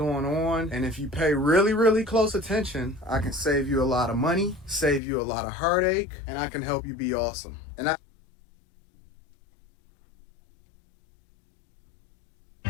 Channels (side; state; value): right; drops out; at 5.0 s